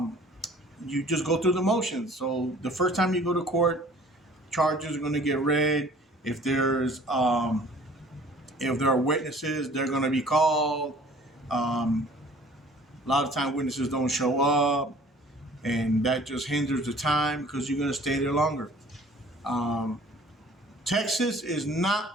just go through the motions. So the first time you go to court, charges are going to get read. If there are witnesses, they're going to be called. A lot of times witnesses don't show up, and that just hinders the time because you're going to stay there longer. Texas is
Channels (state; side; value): normal; both; correlation 0.51